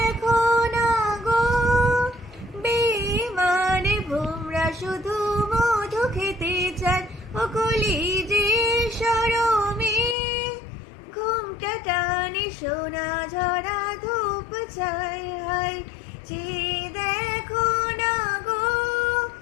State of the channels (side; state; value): right; drops out; at 10.2 s